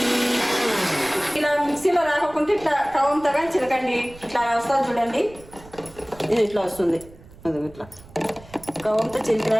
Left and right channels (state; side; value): noise; right; rumble, 21 dB below the sound